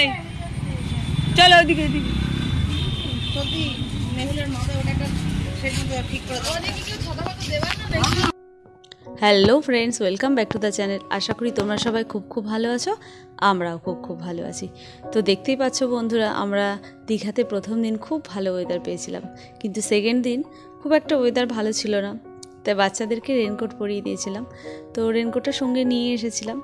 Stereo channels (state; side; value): identical; both; correlation 1.00